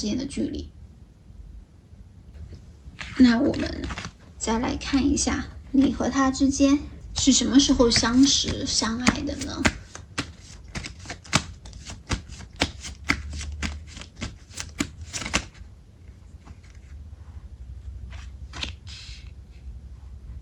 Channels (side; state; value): both; identical; correlation 1.00